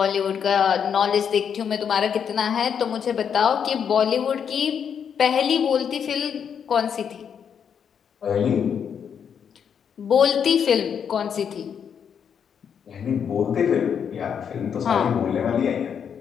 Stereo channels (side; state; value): right; quieter; 7.6 dB